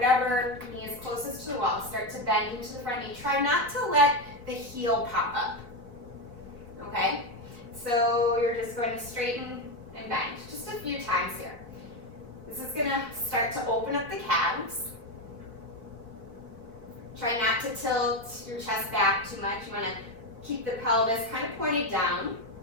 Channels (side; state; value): left; late; 4.1 ms